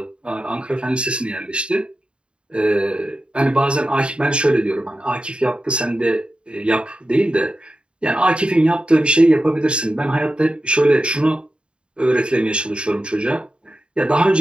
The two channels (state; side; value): late; left; 0.054 ms